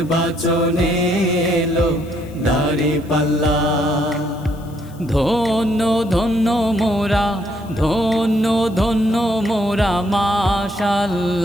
এলো দাঁড়িপাল্লা। ধন্য ধন্য মোরা, ধন্য ধন্য মোরা,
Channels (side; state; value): left; noise; hiss, 26 dB below the sound